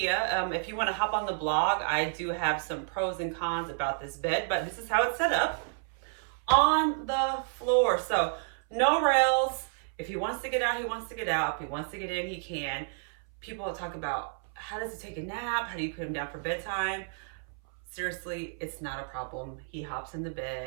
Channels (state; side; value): silent; left; 57 dB below the other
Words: If you want to hop on the blog, I do have some pros and cons about this bed, but this is how it's set up on the floor. So no rails. If he wants to get out, he wants to get out. If he wants to get in, he can. People talk about how does he take a nap? How do you put him down for bedtime? Seriously, it's not a problem. He hops in the